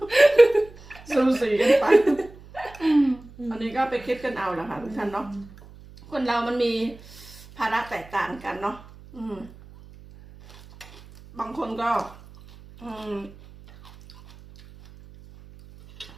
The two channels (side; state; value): right; noise; hum, 21 dB below the sound